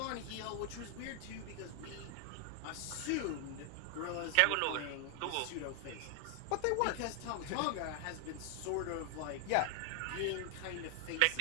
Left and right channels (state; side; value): different; both; correlation 0.00